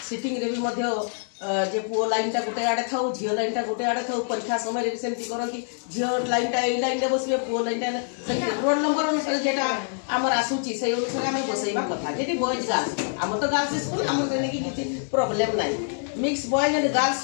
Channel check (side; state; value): right; silent; 61 dB below the other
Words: सिटिंग रे भी मध्य जे पुओ लाइन टा गोटे आड़े था झील लाइन टा गोटे आड़े था परीक्षा समय भी सेमती करती झील लाइन टा ए लाइन रे बसबे पुओ लाइन टा रोल नंबर अनुसार जेटा आमर आसुची से अनुसार आम बसैबा कथा जेटी बॉयज गर्ल्स आम तो गर्ल्स स्कूल आम कि प्रॉब्लम नहीं mix boys and girls